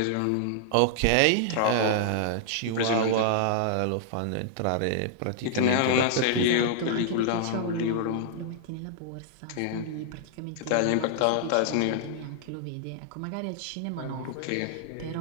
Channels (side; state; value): both; different; correlation -0.01